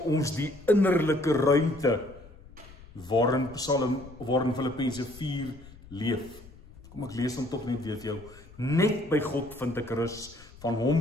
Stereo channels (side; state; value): left; noise; rumble, 20 dB below the sound